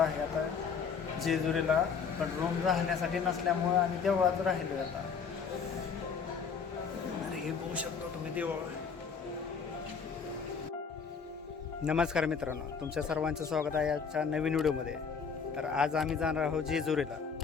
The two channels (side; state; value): right; quieter; 6.0 dB